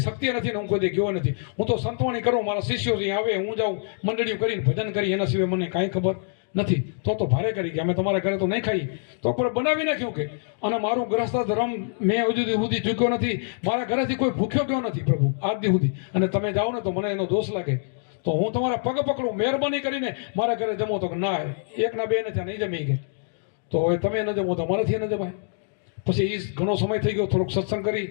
નથી ને હું કોઈ ગયો નથી. હું તો સંતવાણી કરું, મારા શિષ્યો અહીં આવે, હું જાઉં મંડળીઓ કરીને ભજન કરી, એના સિવાય મને કાંઈ ખબર નથી. તો ભારે કરી કે અમે તમારા ઘરે તો નહીં ખાઈ. તો પણ બનાવી નાખ્યું કે અને મારું ગ્રસ્ત ધર્મ મેં હજુ સુધી ચૂક્યો નથી. મારા ઘરેથી કોઈ ભૂખ્યો ગયો નથી પ્રભુ આજ દી સુધી. અને તમે જાઓ ને તો મને એનો દોષ લાગે તો હું તમારા પગ પકડું, મહેરબાની કરીને મારા ઘરે જમો. તો ના, 1 ના 2 ને ત્યાં નહીં જમી ગયા. તો હવે તમે ન જમો તો અમારાથી ન જમાય. પછી એ ઘણો સમય થઈ ગયો, થોડોક સત્સંગ કરી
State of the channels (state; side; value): silent; right; digital silence